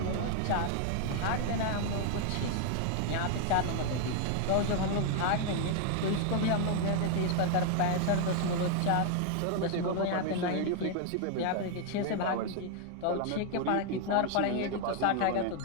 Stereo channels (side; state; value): both; different; correlation 0.00